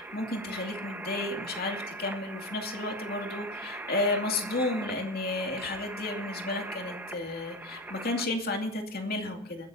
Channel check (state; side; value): normal; both; correlation 0.23